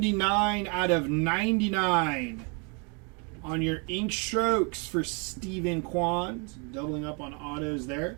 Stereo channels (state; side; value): quieter; left; 35.0 dB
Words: out of 99 on your ink strokes for Stephen Kwan. Doubling up on autos there.